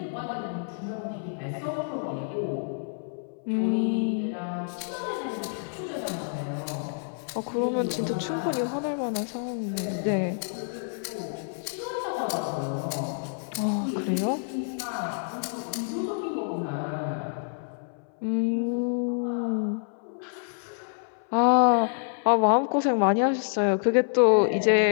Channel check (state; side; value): silent; right; 59 dB below the other